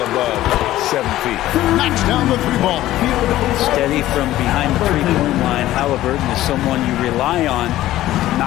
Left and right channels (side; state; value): right; quieter; 14.8 dB